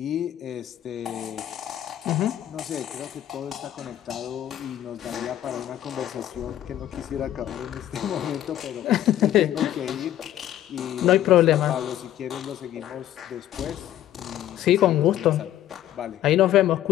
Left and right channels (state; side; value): quieter; right; 12.3 dB